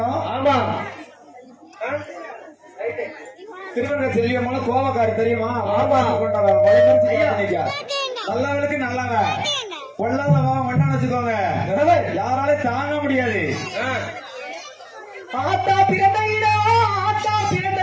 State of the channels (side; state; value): both; identical; correlation 1.00